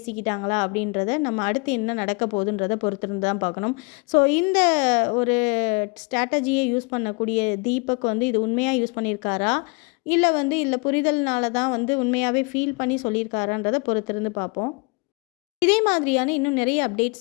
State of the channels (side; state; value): right; quieter; 31.0 dB